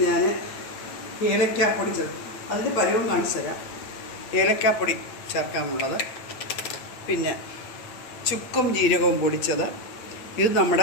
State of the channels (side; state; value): right; late; 8.6 ms